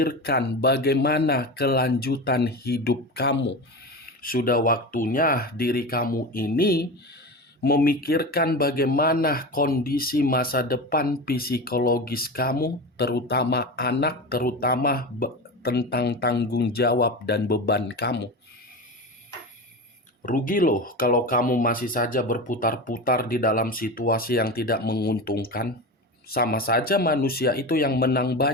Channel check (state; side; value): normal; both; correlation 0.25